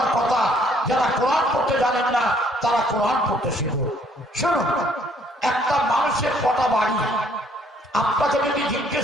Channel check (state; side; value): normal; both; correlation 0.64